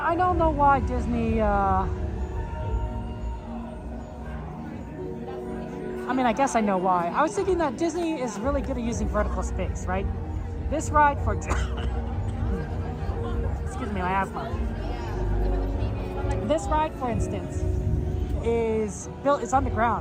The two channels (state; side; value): identical; both; correlation 1.00